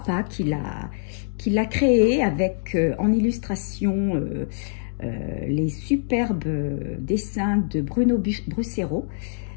qui l'a créé avec en illustration les superbes dessins de Bruno Brussero.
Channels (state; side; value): silent; right; digital silence